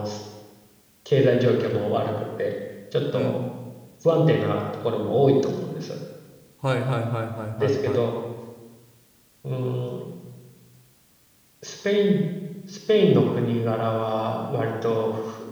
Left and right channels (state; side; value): identical; both; correlation 1.00